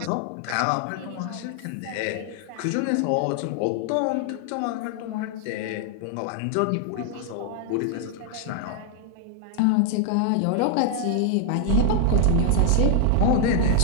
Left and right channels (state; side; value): different; both; correlation 0.00